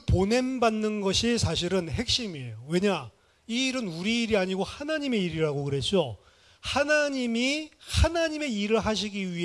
보냄 받는 것이 사실은 핵심이에요. 왜냐? 이 일은 우리 일이 아니고 하나님의 일이라고 그랬죠. 하나님이 하나님의 일을 하시기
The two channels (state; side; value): identical; both; correlation 1.00